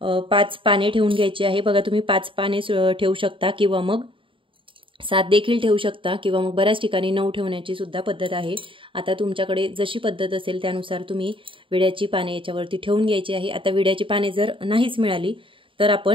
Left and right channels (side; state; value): left; late; 0.25 ms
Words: 5 पाने ठेवून घ्यायची आहे। बघा तुम्ही 5 पाने ठेवू शकता किंवा मग 7 देखील ठेवू शकता किंवा मग बऱ्याच ठिकाणी 9 ठेवण्याची सुद्धा पद्धत आहे। आता तुमच्याकडे जशी पद्धत असेल त्यानुसार तुम्ही विड्याची पाने याच्यावरती ठेवून घ्यायची आहे। आता विड्याची पाने जर नाहीच मिळाली तर